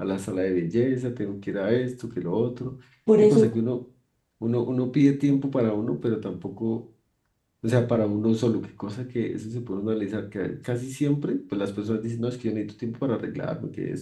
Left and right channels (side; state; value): both; identical; correlation 1.00